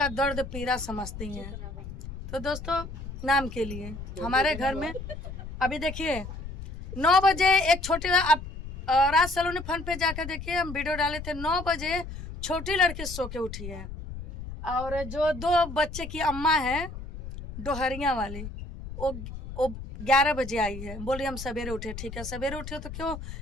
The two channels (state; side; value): noise; left; rumble, 10 dB below the sound